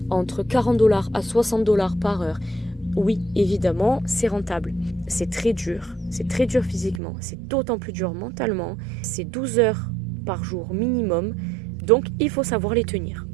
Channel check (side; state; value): left; drops out; at 7.0 s